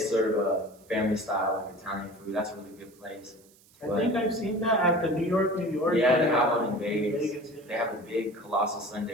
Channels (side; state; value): right; noise; hiss, 28 dB below the sound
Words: a family style like Italian food. That's a really good place. I think I've seen that at the New York. Yeah, they have one in Vegas. Yeah. They have a big colossal